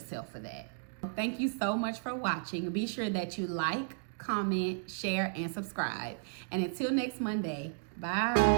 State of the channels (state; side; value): silent; left; digital silence